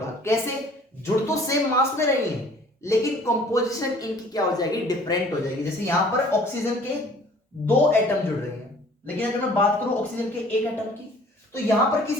कैसे, जुड़ तो सेम मास में रहे हैं लेकिन कंपोजिशन इनकी क्या हो जाएगी, डिफरेंट हो जाएगी। जैसे यहां पर ऑक्सीजन के 2 एटम जुड़ रहे हैं, लेकिन अगर मैं बात करूं ऑक्सीजन के 1 एटम की, तो यहां पर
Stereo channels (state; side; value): normal; both; correlation 0.53